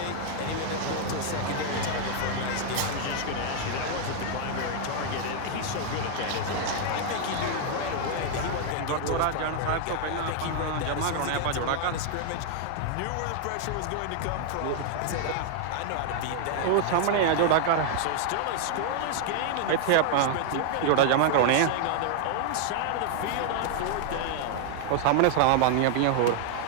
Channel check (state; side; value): different; both; correlation 0.00